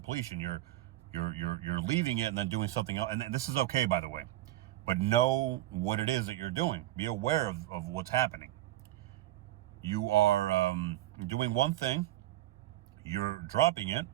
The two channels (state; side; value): quieter; left; 15.2 dB